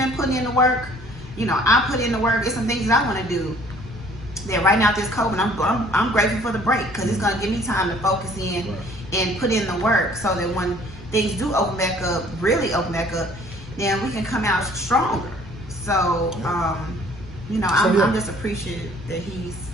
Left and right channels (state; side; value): normal; both; correlation 0.56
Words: putting in the work. You know, I put in the work. There's some things that I want to do that right now, this COVID, I'm grateful for the break, because it's going to give me time to focus in and put in the work, so that when things do really open back up, then we can come out stronger. So, you know, I'm just appreciative that he's,